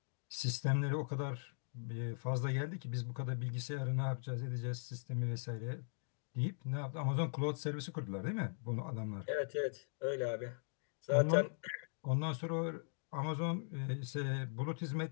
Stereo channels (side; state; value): right; silent; digital silence